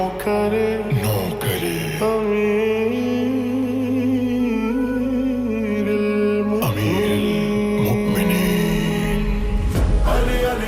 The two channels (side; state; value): both; identical; correlation 1.00